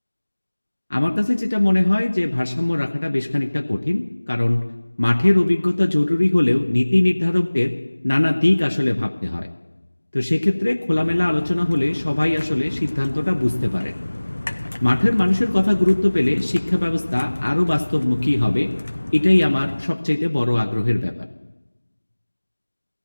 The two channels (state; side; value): inverted; both; correlation -1.00